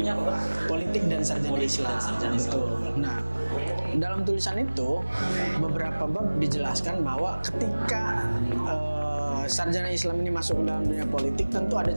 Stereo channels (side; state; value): both; inverted; correlation -1.00